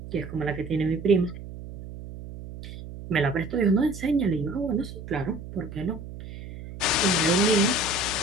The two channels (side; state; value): right; noise; hum, 12 dB below the sound